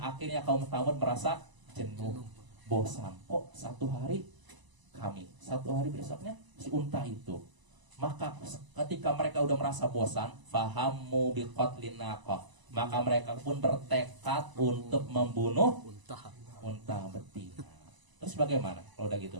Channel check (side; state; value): left; late; 1.0 ms